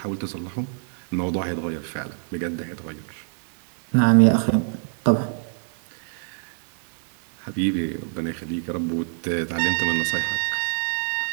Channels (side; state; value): left; silent; digital silence